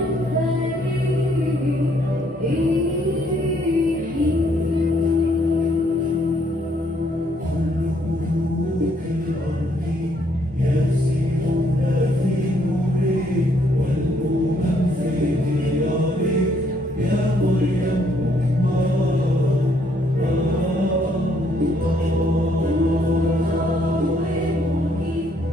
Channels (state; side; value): normal; both; correlation 0.69